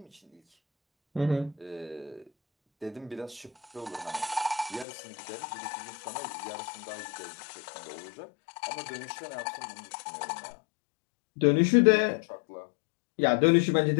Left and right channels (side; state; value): right; drops out; at 4.9 s